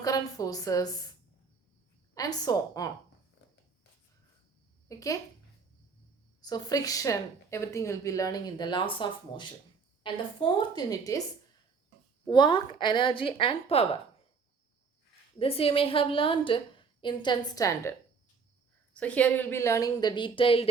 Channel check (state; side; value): quieter; left; 5.2 dB